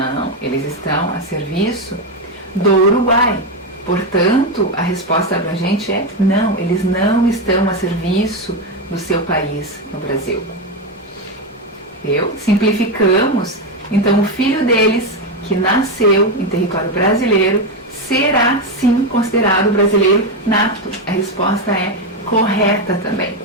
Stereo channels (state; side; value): normal; both; correlation 0.10